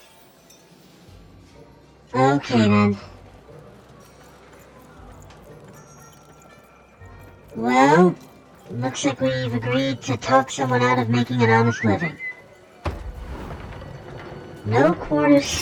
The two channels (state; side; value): identical; both; correlation 1.00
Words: Okay then. Well, looks like we've agreed to talk someone out of making an honest living. No quarter